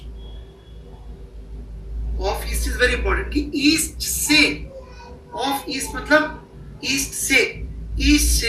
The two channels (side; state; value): both; identical; correlation 1.00